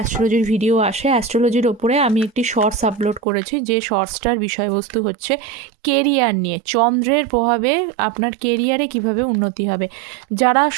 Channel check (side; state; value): left; drops out; at 3.2 s